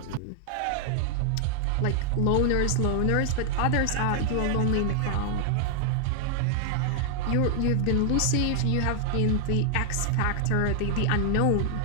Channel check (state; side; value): different; both; correlation 0.00